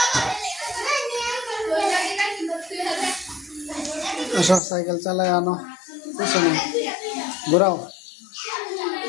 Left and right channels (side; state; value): right; drops out; at 4.6 s